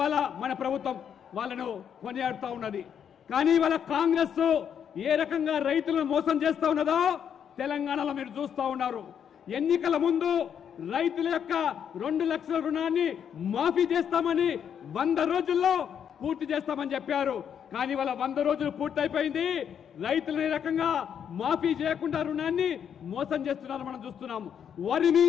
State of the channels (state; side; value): quieter; right; 8.3 dB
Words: మన ప్రభుత్వం వాళ్ళను కొనియాడుతూ ఉన్నది. కానీ ఇవాళ కాంగ్రెస్ ఏ రకంగా రైతులను మోసం చేస్తూ ఉన్నదో తెలంగాణలో మీరు చూస్తూ ఉన్నారు. ఎన్నికల ముందు రైతుల యొక్క 2 లక్షల రుణాన్ని మాఫీ చేస్తామని 100 రోజుల్లో పూర్తి చేస్తామని చెప్పారు. కానీ వాళ్ళ 100 రోజులు పూర్తయిపోయింది. రైతులు ఈ రకంగా మాఫీ చేయకుండా రుణాన్ని మోసం చేస్తున్నారు మనం చూస్తున్నాము. వరి